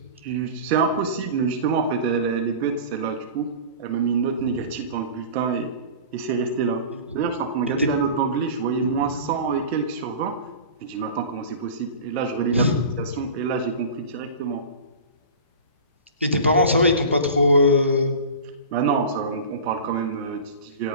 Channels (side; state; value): both; inverted; correlation -0.34